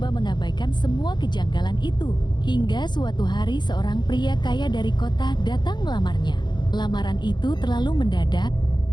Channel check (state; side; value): late; right; 0.21 ms